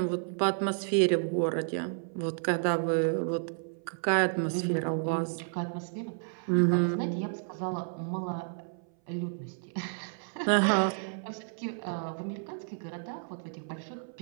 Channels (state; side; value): silent; left; 57 dB below the other